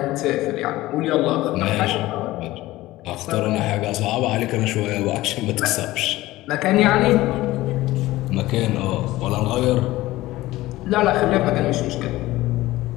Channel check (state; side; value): quieter; right; 17.4 dB